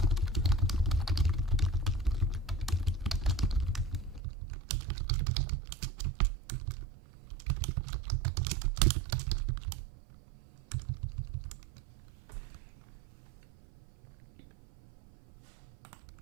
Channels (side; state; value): left; drops out; at 4.2 s